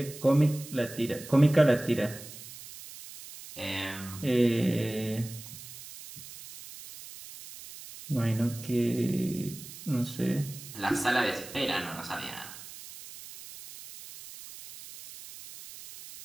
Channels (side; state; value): right; noise; hiss, 15 dB below the sound